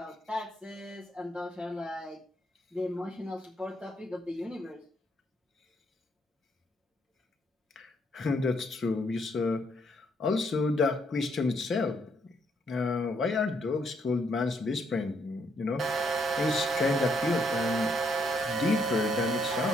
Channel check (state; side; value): normal; both; correlation 0.73